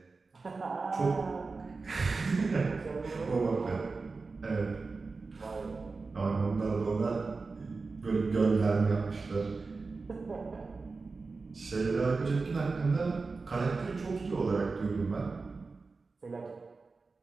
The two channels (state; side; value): quieter; left; 4.1 dB